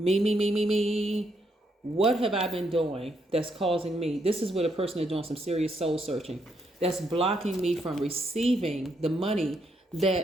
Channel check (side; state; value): both; normal; correlation 0.76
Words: What have I been doing that's causing me? This is where the person is doing some serious soul searching. That's blocking me from receiving the money